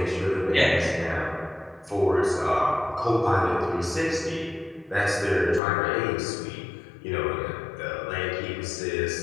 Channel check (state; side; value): drops out; right; at 5.6 s